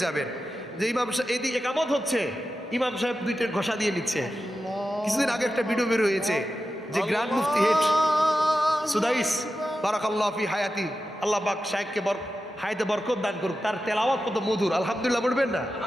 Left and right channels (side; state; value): both; normal; correlation 0.92